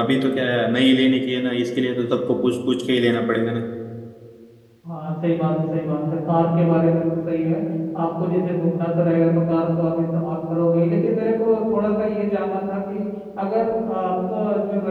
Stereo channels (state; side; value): identical; both; correlation 1.00